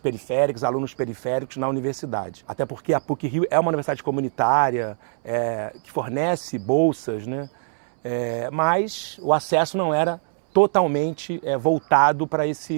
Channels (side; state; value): left; silent; 63 dB below the other